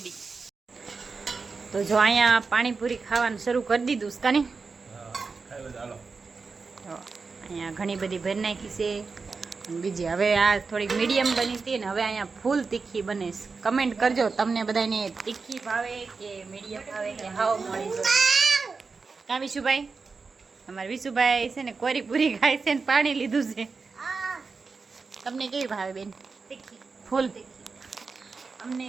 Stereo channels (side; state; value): left; quieter; 4.6 dB